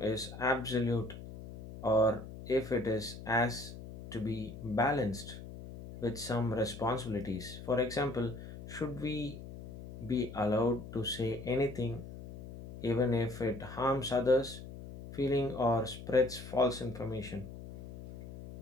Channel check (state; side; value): noise; left; hum, 12 dB below the sound